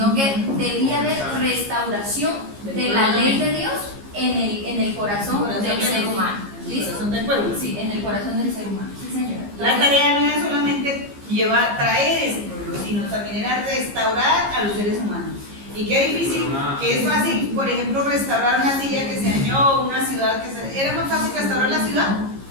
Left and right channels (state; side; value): late; left; 15 ms